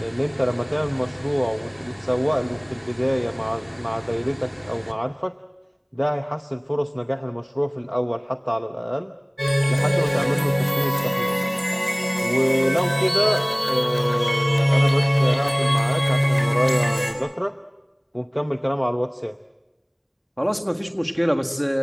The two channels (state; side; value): identical; both; correlation 1.00